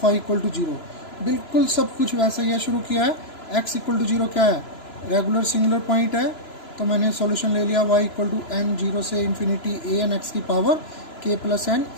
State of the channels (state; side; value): late; right; 3.0 ms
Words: y equal to 0. बिल्कुल सब कुछ वैसे ही है. शुरू किया है x इक्वल टू 0 क्या है, रेगुलर सिंगुलर पॉइंट है, तो मैंने सॉल्यूशन ले लिया y इक्वल टू n 0 से इन्फिनिटी a n x की power k plus n